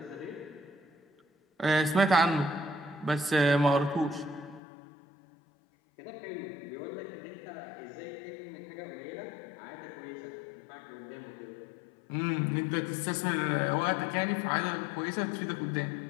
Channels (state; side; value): drops out; right; at 4.6 s